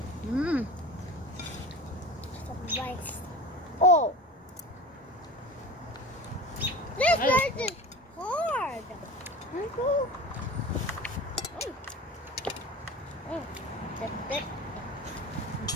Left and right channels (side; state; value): both; normal; correlation 0.34